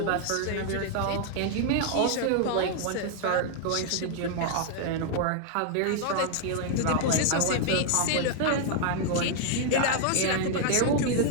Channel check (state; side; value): different; both; correlation 0.00